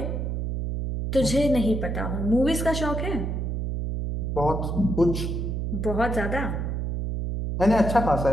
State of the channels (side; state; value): right; noise; hum, 2 dB below the sound